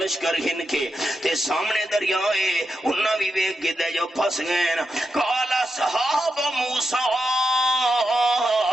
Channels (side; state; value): both; normal; correlation 0.86